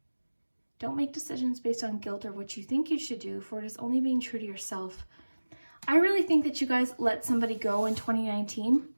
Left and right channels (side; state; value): both; inverted; correlation -1.00